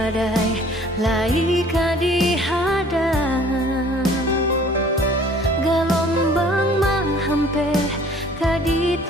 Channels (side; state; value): both; normal; correlation 0.52